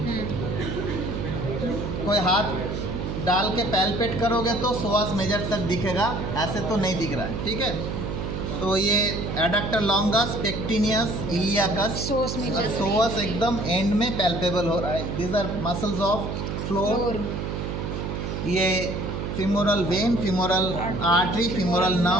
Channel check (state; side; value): noise; right; hum, 4 dB below the sound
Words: कोई हाथ डाल के पैल्पेट करोगे तो psoas मेजर तक दिखेगा, ऐसे तो नहीं दिख रहा है। ठीक है, तो ये adductor longus, pectineus, iliacus, psoas एकदम एंड में पैल्पेबल हो रहा है। These are muscles of floor. ये femoral vein, femoral artery, femoral